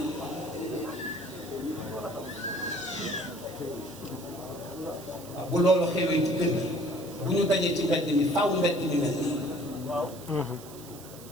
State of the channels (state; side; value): noise; right; hiss, 18 dB below the sound